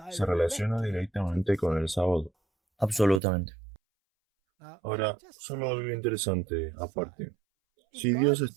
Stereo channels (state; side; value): drops out; left; at 3.2 s